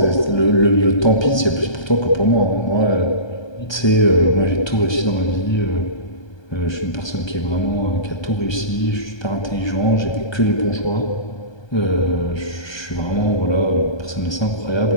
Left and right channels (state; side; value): late; right; 1.3 ms